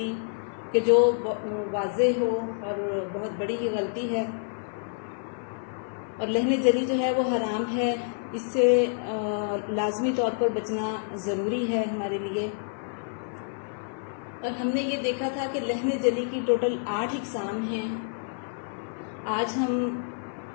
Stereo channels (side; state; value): right; silent; 56 dB below the other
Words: کہ جو واضح ہو اور بہت بڑی ہی غلطی ہے، اور لہن جلی جو ہے وہ حرام ہے، اس سے لازمی طور پر بچنا ضروری ہے ہمارے لیے. اور ہم نے یہ دیکھا تھا کہ لہن جلی کی ٹوٹل 8 اقسام ہیں. آج ہم